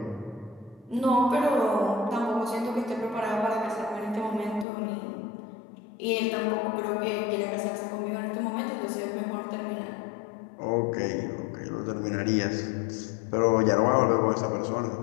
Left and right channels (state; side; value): drops out; right; at 4.7 s